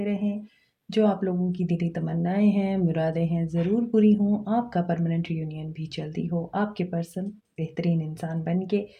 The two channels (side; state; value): both; identical; correlation 1.00